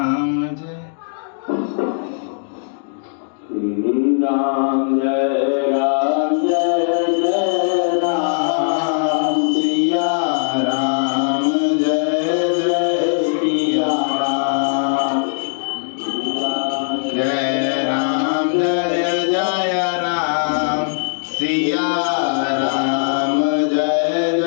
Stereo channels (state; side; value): silent; right; digital silence